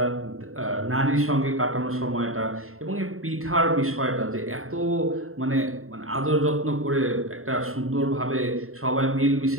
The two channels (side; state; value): left; late; 0.62 ms